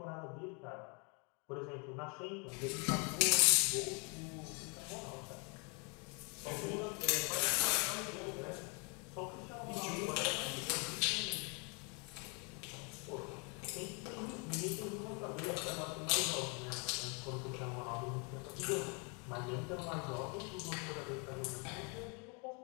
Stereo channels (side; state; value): right; quieter; 34.0 dB